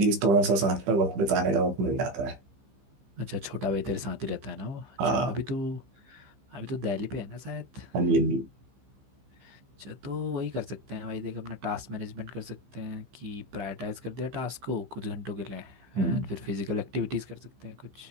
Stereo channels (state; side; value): late; left; 15 ms